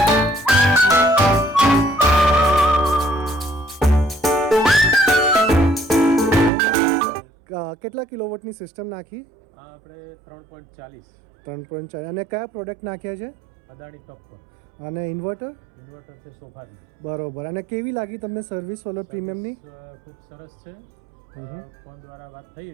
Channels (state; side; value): drops out; left; at 6.5 s